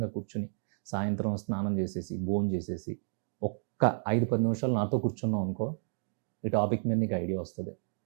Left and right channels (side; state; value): left; silent; digital silence